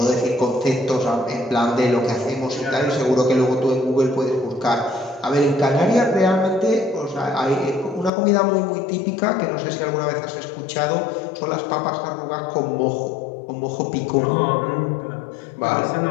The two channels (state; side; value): drops out; right; at 8.1 s